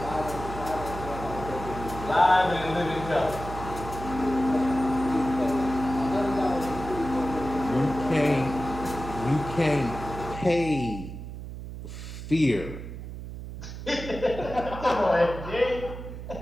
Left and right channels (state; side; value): noise; right; hum, 10 dB below the sound